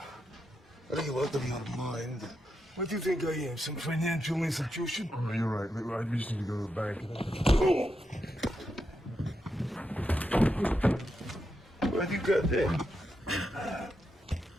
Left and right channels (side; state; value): both; normal; correlation 0.85